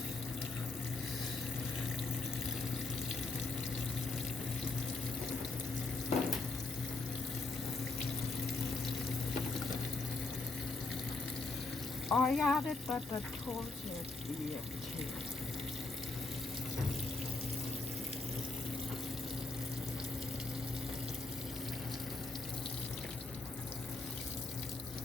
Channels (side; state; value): right; quieter; 3.7 dB